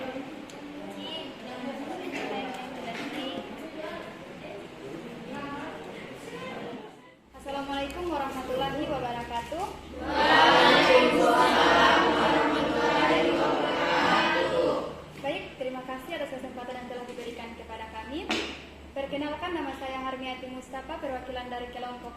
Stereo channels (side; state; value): both; identical; correlation 1.00